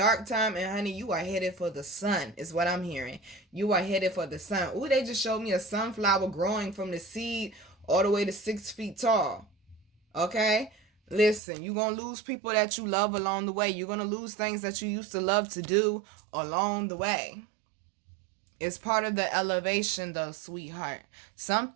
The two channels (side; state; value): left; drops out; at 11.4 s